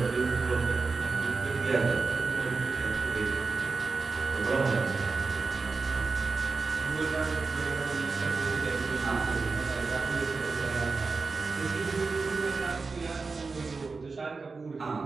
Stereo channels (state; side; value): quieter; left; 4.3 dB